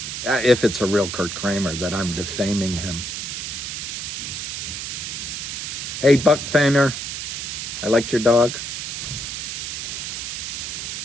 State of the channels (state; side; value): noise; right; hiss, 5 dB below the sound